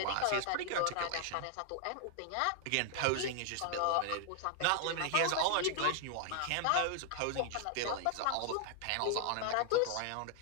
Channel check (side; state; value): both; different; correlation 0.00